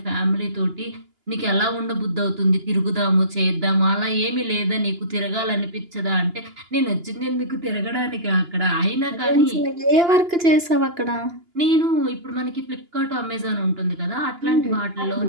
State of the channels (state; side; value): late; left; 2.9 ms